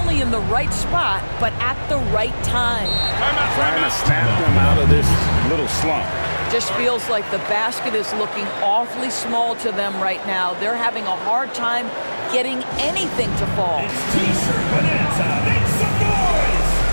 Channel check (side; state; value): both; inverted; correlation -1.00